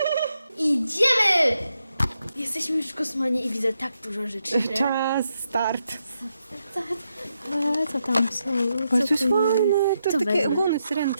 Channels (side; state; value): both; inverted; correlation -0.83